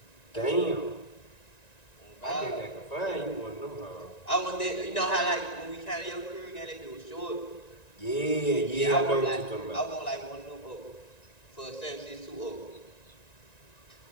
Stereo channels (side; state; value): right; late; 1.9 ms